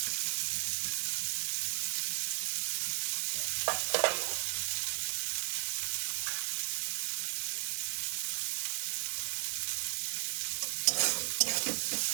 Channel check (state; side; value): silent; left; digital silence